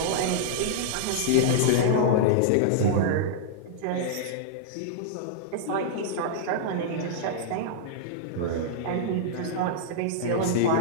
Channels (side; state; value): both; different; correlation -0.02